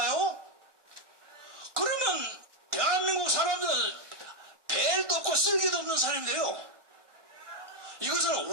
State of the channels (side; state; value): left; late; 1.6 ms